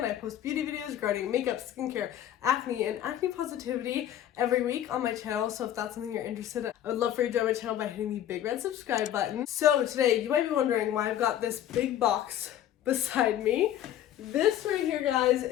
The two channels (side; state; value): right; quieter; 11.3 dB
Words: I post beauty videos regarding makeup, skincare, acne, and acne positivity every week on my channel. So if that's something you're interested in, I would love for you to join my channel by hitting the big red subscribe button. So today, you might be wondering why I've got this big box beside me. This right here, guys,